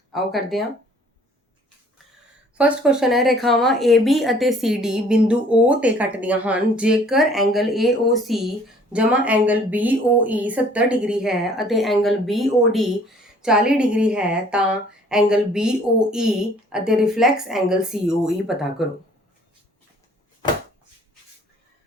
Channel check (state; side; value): normal; both; correlation 0.56